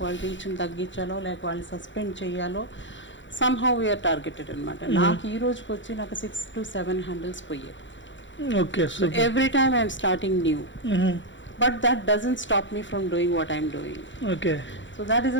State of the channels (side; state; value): right; late; 0.54 ms